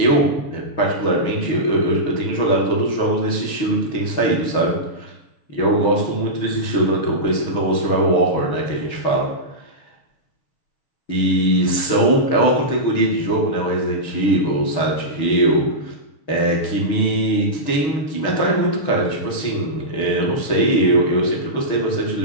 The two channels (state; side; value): late; right; 6.4 ms